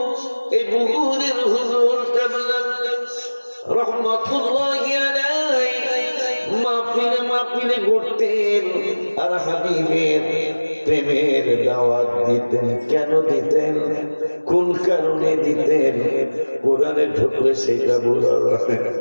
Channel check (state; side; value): inverted; both; correlation -1.00